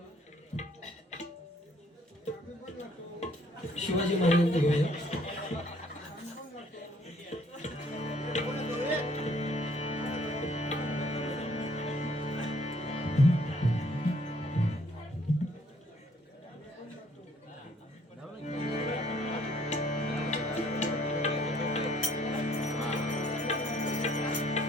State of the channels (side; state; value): both; normal; correlation 0.62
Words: शिवाजी महाराजांचं घेऊया